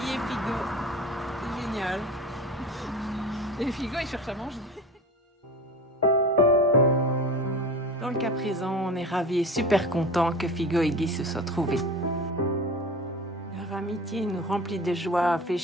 et Figo. C'est génial. Et Figo, il cherche à manger. Dans le cas présent, on est ravis et super contents que Figo et Guy se soient trouvés. Leur amitié nous remplit de joie, fait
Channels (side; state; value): both; normal; correlation 0.34